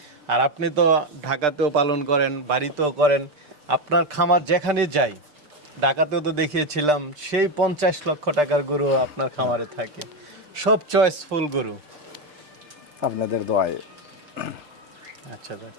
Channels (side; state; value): left; late; 6.7 ms